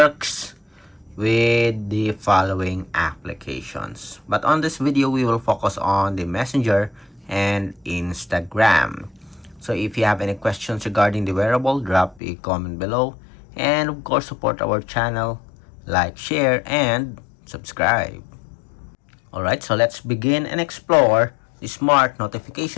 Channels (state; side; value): drops out; right; at 12.2 s